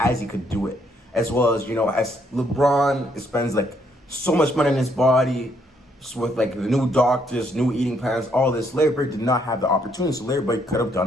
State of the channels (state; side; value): normal; both; correlation 0.71